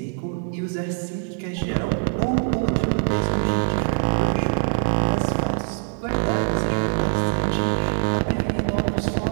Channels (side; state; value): left; silent; 59 dB below the other